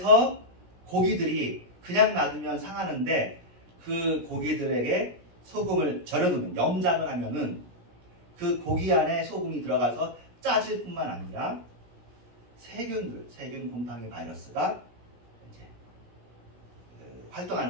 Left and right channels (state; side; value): late; left; 17 ms